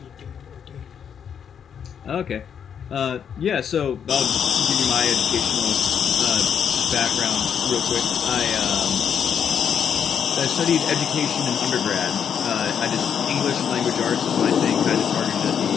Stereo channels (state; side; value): quieter; right; 7.9 dB